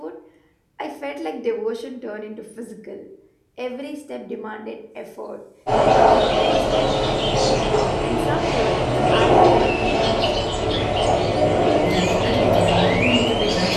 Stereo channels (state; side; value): identical; both; correlation 1.00